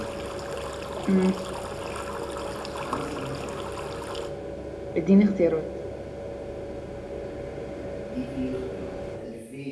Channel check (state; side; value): identical; both; correlation 1.00